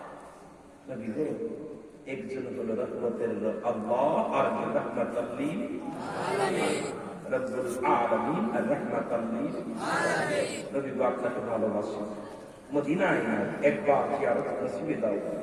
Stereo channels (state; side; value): identical; both; correlation 1.00